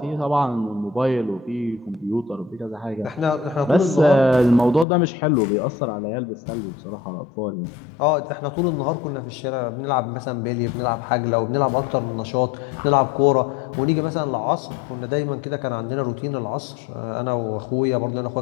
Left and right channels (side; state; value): right; drops out; at 4.9 s